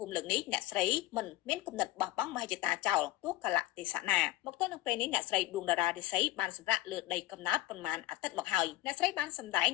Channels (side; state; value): right; quieter; 17.0 dB